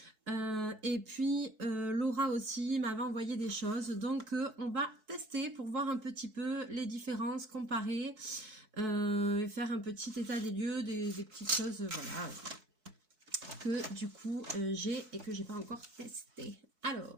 Et puis Laura aussi m'avait envoyé des choses, donc on va tester pour voir un petit peu les différences, comparer et faire un petit état des lieux, des petites choses voilà, que du coup j'ai et que j'ai pas encore testé.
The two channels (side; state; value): left; late; 4.6 ms